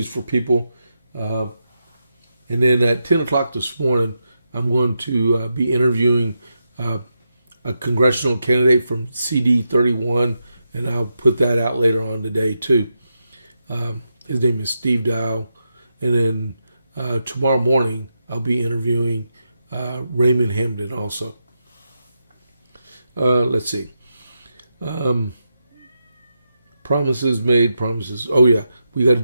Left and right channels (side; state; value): both; inverted; correlation -0.86